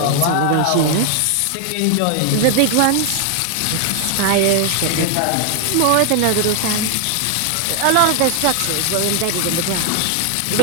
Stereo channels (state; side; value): different; both; correlation 0.00